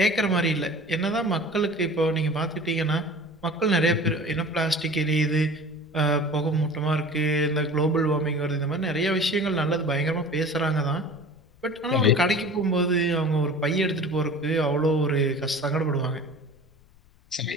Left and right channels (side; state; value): left; noise; rumble, 29 dB below the sound